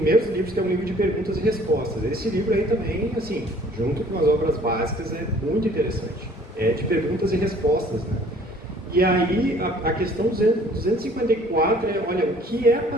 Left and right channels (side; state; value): both; normal; correlation 0.54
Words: livros, que é um livro de perguntas e respostas. Esse livro aí também, assim, junto com as obras básicas, é muito interessante. É de perguntas e respostas, né? E aí, a questão 254 é, olha, o que é a